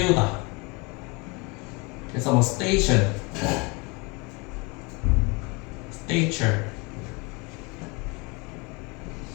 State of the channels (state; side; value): quieter; right; 28.5 dB